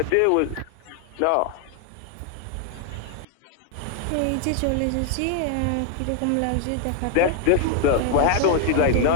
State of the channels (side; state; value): both; different; correlation 0.00